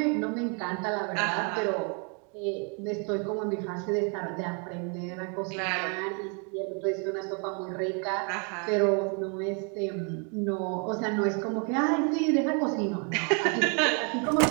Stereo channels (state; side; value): quieter; left; 37.5 dB